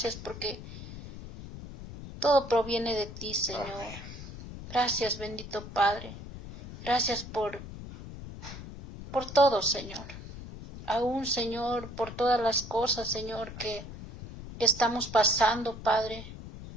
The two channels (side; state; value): left; noise; rumble, 12 dB below the sound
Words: porque todo proviene de ti, Señor. Amén. Gracias, bendito Padre. Gracias por todo, Señor. Aún, Señor, por todas las cosas, Señor, que estamos pasando, Padre.